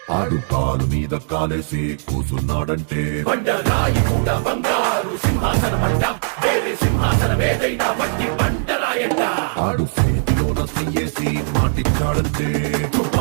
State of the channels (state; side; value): silent; left; digital silence